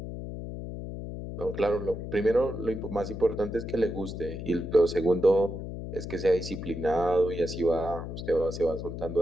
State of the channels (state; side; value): noise; left; hum, 7 dB below the sound